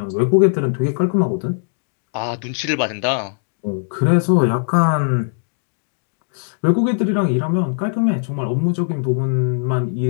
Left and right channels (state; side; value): silent; right; digital silence